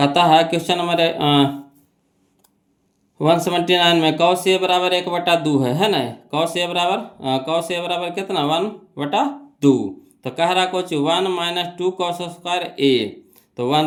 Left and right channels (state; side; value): identical; both; correlation 1.00